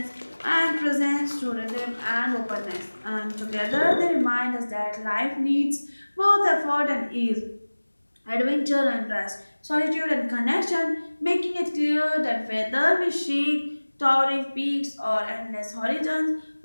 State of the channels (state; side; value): inverted; both; correlation -1.00